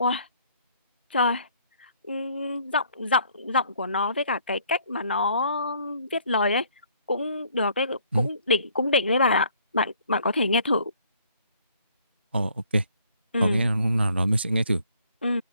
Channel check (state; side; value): inverted; both; correlation -0.62